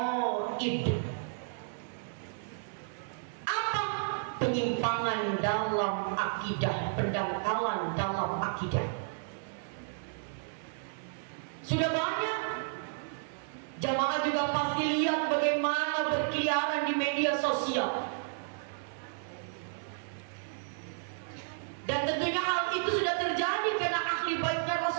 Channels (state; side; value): silent; left; 56 dB below the other